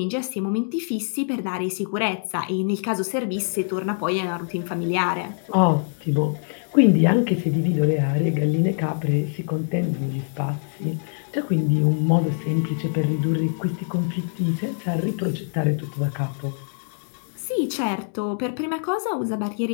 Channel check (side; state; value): right; silent; digital silence